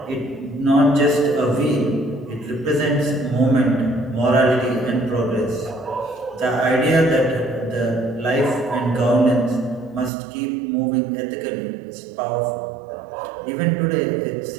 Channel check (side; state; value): left; drops out; at 10.1 s